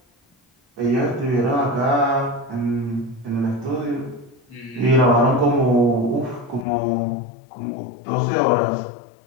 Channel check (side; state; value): right; drops out; at 6.7 s